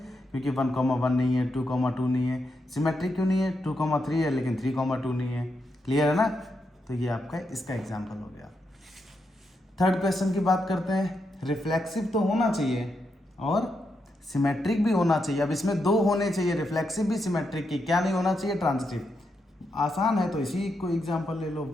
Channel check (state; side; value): normal; both; correlation 0.83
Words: क्योंकि 1,1 नहीं है, 2,2 नहीं है। सिमेट्रिक क्यों नहीं है? 2,3 है लेकिन 3,2 नहीं है। क्लियर है ना? तो ये आपका इसका एग्जाम्पल हो गया। थर्ड क्वेश्चन की बात करते हैं। रिफ्लेक्सिव तो होना चाहिए और सिमेट्रिक भी होना चाहिए। अब इसमें 2 होने चाहिए, रिफ्लेक्सिव भी सिमेट्रिक की। क्या नहीं होना चाहिए? ट्रांजिटिव। आसान है, तो इसी को एग्जाम्पल ले लो,